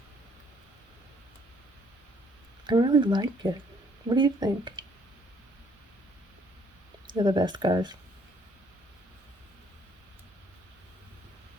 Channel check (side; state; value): both; normal; correlation 0.64